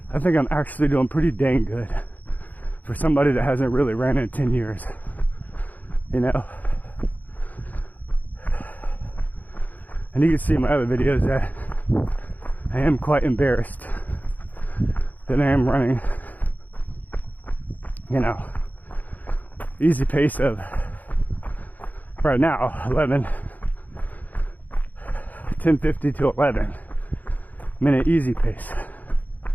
I think I'm actually doing pretty dang good for somebody that hasn't really ran in 10 years. You know? And you can see in my other videos that I am quite embarrassed that I am running, you know, easy pace of right now 10:50 to 11 minute easy pace.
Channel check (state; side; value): late; right; 0.081 ms